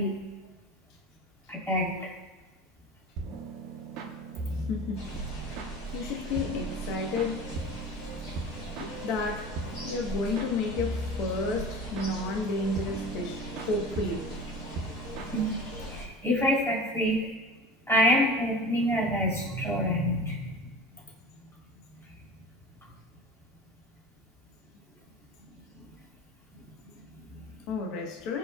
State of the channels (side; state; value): both; normal; correlation 0.36